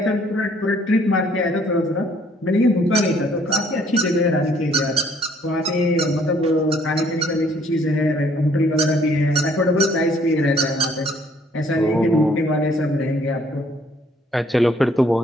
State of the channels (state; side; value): normal; both; correlation 0.62